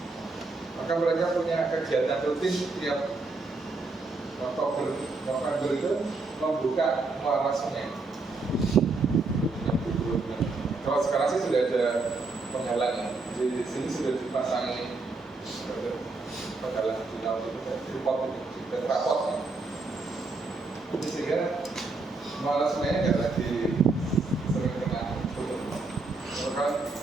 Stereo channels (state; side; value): quieter; left; 3.6 dB